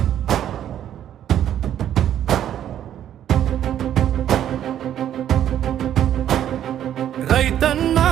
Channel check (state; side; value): quieter; left; 10.7 dB